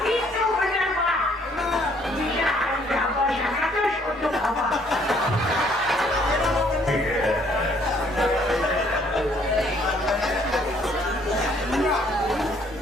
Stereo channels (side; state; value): both; normal; correlation 0.64